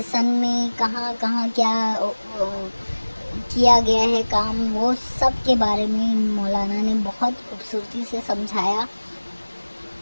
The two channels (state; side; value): inverted; both; correlation -1.00